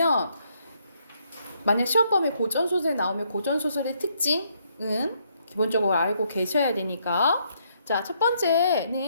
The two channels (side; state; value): both; inverted; correlation -0.73